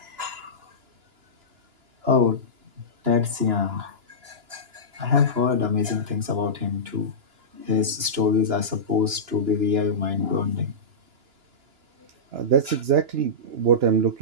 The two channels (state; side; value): late; left; 2.9 ms